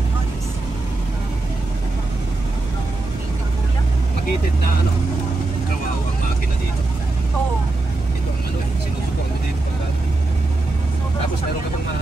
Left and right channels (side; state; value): left; quieter; 3.2 dB